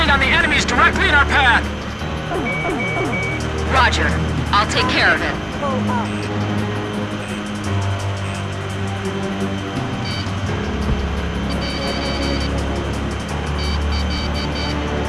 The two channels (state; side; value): identical; both; correlation 1.00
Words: on the enemies directly in our path. Roger. I'll take care of it.